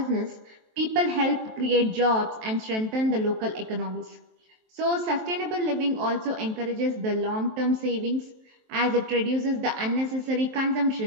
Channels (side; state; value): left; late; 23 ms